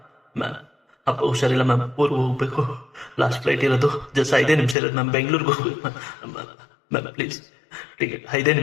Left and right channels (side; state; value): right; drops out; at 4.8 s